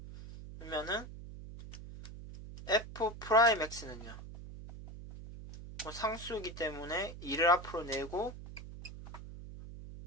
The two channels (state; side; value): noise; right; hum, 12 dB below the sound